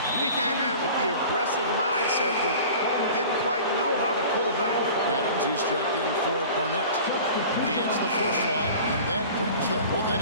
He came in with the aggressive mindset, but didn't quite know how to pull back. Adams, he's checked in for Barnett. He hits the first one, and that brings them within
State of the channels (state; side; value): inverted; both; correlation -0.41